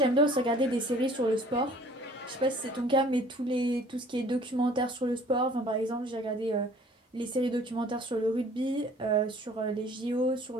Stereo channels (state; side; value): normal; both; correlation 0.52